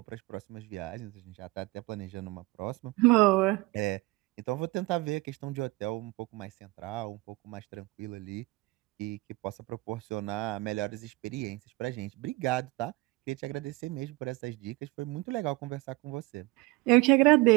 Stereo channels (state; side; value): quieter; left; 22.5 dB